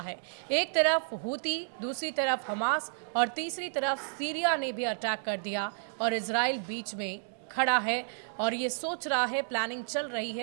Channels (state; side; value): silent; left; digital silence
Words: है। एक तरफ हूती, दूसरी तरफ हमास और तीसरी तरफ सीरिया ने भी अटैक कर दिया और इजराइल बीच में खड़ा है और ये सोच रहा है, प्लानिंग चल रही